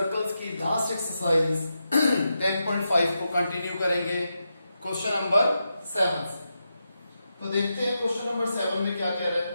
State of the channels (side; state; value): both; inverted; correlation -0.87